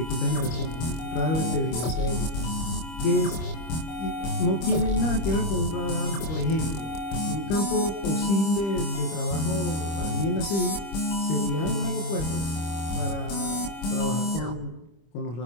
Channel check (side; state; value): right; late; 25 ms